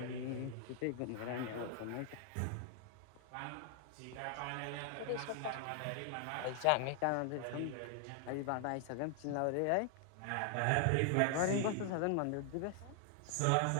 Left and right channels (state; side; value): different; both; correlation 0.00